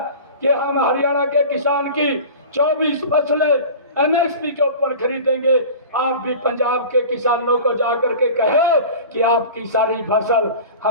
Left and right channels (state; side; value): inverted; both; correlation -0.37